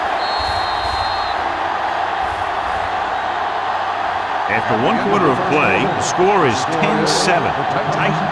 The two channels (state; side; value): identical; both; correlation 1.00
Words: After 1 quarter of play, the score is 10-7.